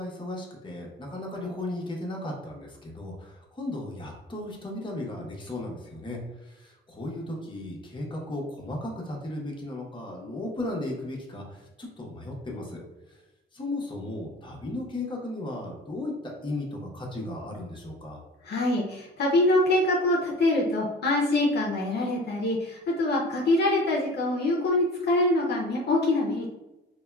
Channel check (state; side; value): normal; both; correlation 0.42